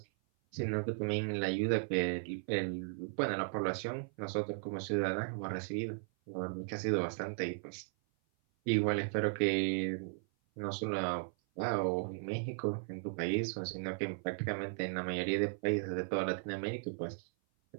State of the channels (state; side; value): silent; left; 54 dB below the other